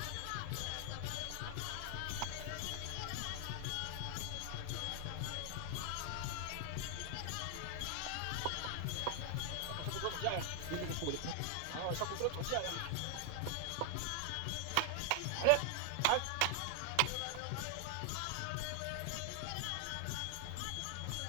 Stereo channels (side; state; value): both; different; correlation 0.00